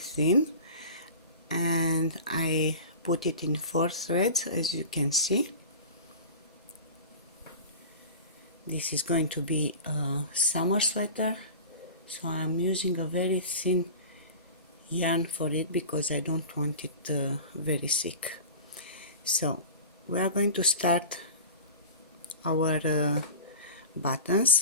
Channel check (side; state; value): both; inverted; correlation -0.34